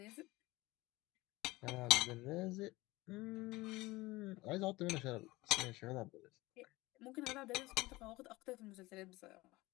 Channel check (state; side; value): quieter; right; 20.5 dB